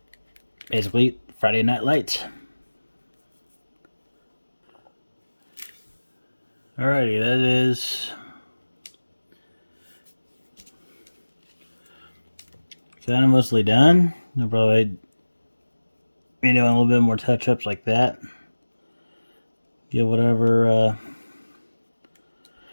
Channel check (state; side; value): inverted; both; correlation -1.00